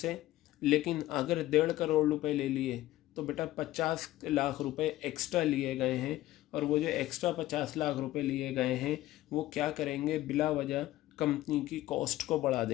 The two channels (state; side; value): quieter; right; 15.7 dB